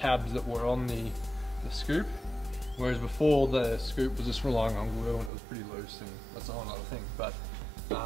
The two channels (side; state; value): left; drops out; at 5.3 s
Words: that were on the scoop, whereas before the scoop was just relying on glue and it was pretty loose, and that's a whole other thing. But